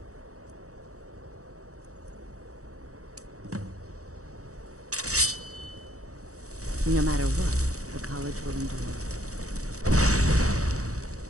No matter what, the college will endure.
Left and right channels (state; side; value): late; left; 0.65 ms